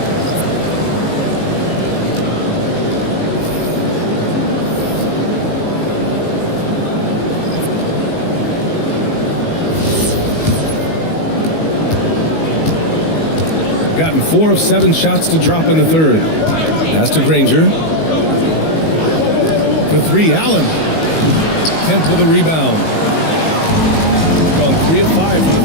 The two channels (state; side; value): late; right; 19 ms